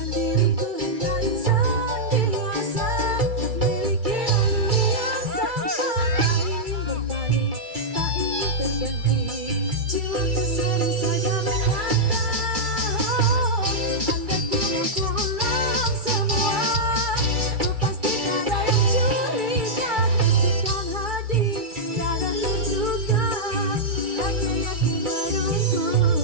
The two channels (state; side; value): late; left; 2.3 ms